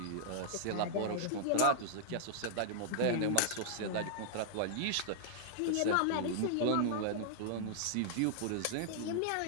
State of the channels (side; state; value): both; different; correlation -0.01